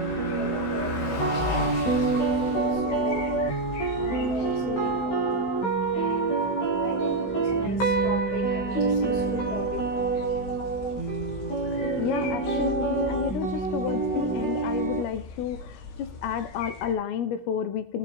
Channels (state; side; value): late; right; 16 ms